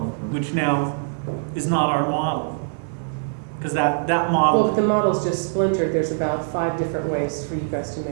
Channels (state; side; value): silent; left; digital silence